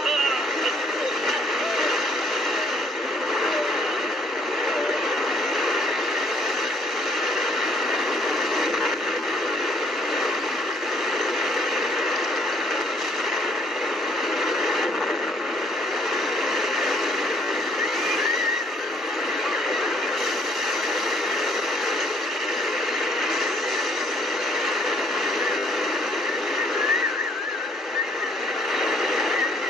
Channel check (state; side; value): normal; both; correlation 0.63